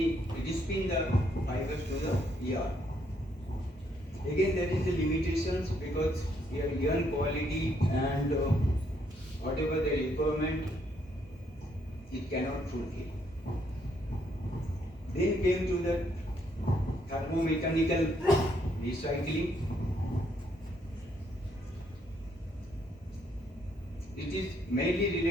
the fibers to the yarn. Again, there is a limitations because your yarn quality and whatever the requirement, it cannot fulfill. Then came to the thermomechanical recycling. It is mainly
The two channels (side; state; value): both; normal; correlation 0.72